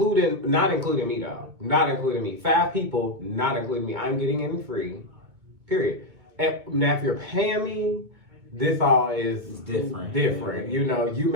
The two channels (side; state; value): left; late; 2.2 ms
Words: not including me though. Not including me. 5 people, not including me. I'm getting in free. Period. And now if you're paying me, this all is different. You know, you